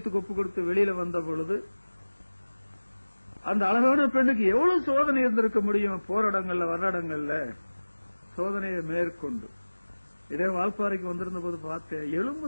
ஒப்பு கொடுத்து வெளியில வந்த பொழுது அந்த அழகான பெண்ணுக்கு எவ்வளவு சோதனை இருந்திருக்க முடியும். போராடங்கள்ல வர்றடங்கள்ல சோதனையை மேற்கொண்டு இதே வால்பாறைக்கு வந்திருந்த போது பார்த்தேன், எலும்பு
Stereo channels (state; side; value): inverted; both; correlation -1.00